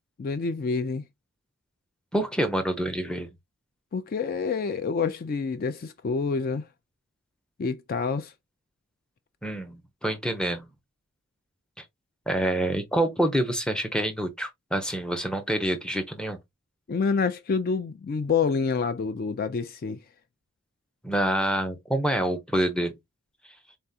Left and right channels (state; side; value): normal; both; correlation 0.55